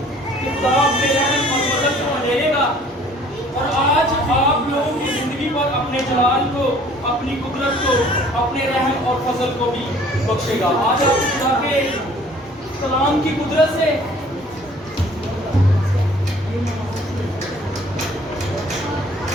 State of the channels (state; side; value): normal; both; correlation 0.54